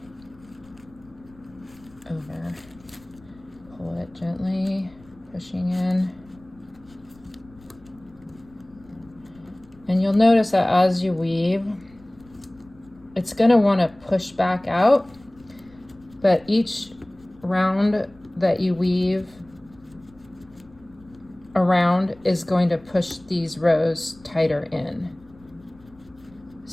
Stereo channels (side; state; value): left; noise; rumble, 26 dB below the sound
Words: over. Pull it gently, pushing in. And you'll notice that as you weave, it's going to want to push back out, but each round that you weave around is going to push these rows tighter in.